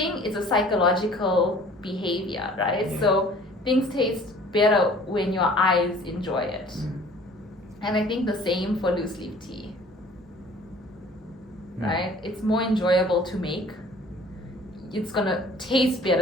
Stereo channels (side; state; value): both; normal; correlation 0.51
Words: is a psychological behavior, right? Yeah. So things taste better when your eyes enjoy it. Mm. And I think the same for loose leaf tea, Mm. right? It's more enjoyable to make. It's gonna taste